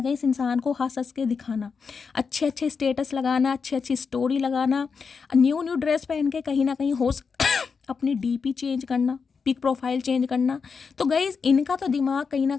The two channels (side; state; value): right; quieter; 5.5 dB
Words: कहीं इस इंसान को हंस हंस के दिखाना, अच्छे अच्छे स्टेटस लगाना, अच्छी अच्छी स्टोरी लगाना, न्यू न्यू ड्रेस पहन के कहीं ना कहीं अपनी डीपी चेंज करना, पिक प्रोफाइल चेंज करना। तो गाइज इनका तो दिमाग कहीं ना